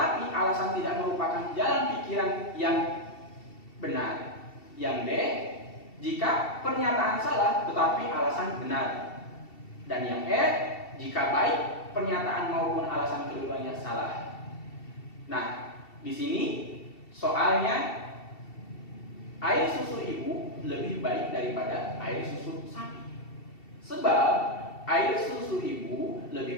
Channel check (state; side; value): late; right; 2.7 ms